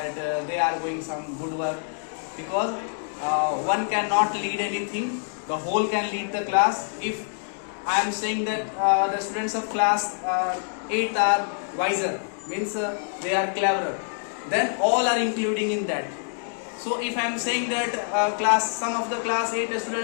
they are doing some good work, because one cannot lead anything, the whole can lead the class. If I am saying that the students of class 8 are wiser, means they are cleverer, then all are including in that. So if I am saying that some of the class 8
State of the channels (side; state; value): right; silent; digital silence